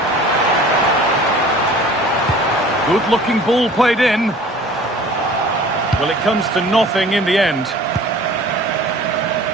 Good-looking ball played in. Well, it comes to nothing in the end.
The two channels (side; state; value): both; normal; correlation 0.46